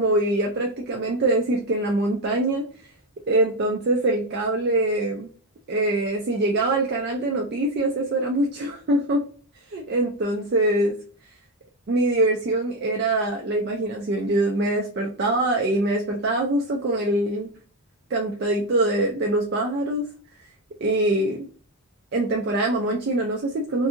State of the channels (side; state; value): both; normal; correlation 0.11